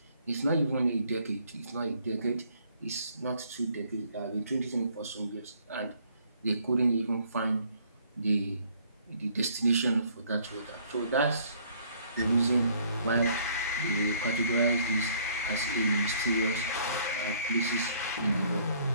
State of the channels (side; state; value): both; inverted; correlation -0.62